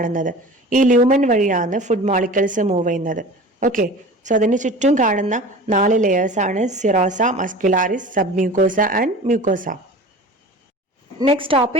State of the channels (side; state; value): both; normal; correlation 0.38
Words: ഈ lumen വഴിയാണ് food molecules move ചെയ്യുന്നത്. Okay, so അതിന് ചുറ്റും കാണുന്ന 4 layers ആണ് serosa, muscularis, submucosa and mucosa. Next